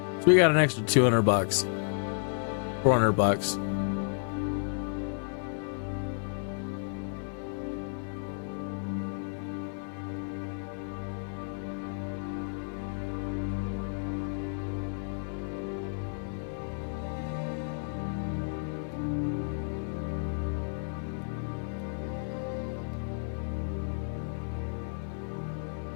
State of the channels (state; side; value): silent; right; 57 dB below the other